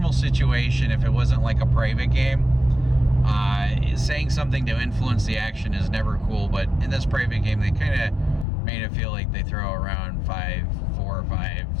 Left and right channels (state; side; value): drops out; right; at 8.5 s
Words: situation, if it wasn't like a private game, saying something to influence the action is never cool. But in this private game, they kind of made it feel like they throw around $4,000, $5,000,